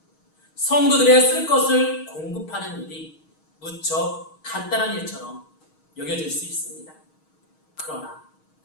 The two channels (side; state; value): right; late; 6.4 ms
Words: 성도들의 쓸 것을 공급하는 일이 무척 간단한 일처럼 여겨질 수 있습니다. 그러나